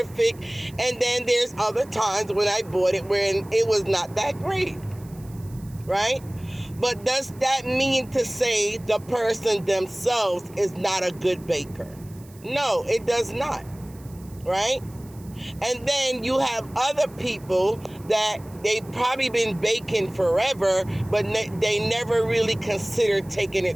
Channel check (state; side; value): noise; right; hiss, 25 dB below the sound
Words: and then there's other times when I bought it when it was not that great. Right? But does that mean to say the person themselves is not a good baker? No, it does not. Right? And then you have other people that they've probably been baking forever, but they never really considered taking